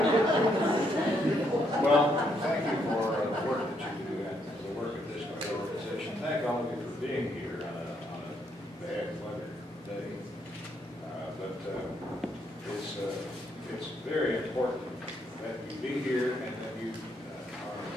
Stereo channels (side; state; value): both; normal; correlation 0.74